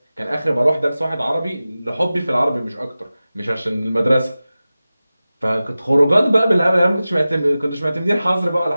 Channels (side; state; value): both; inverted; correlation -0.96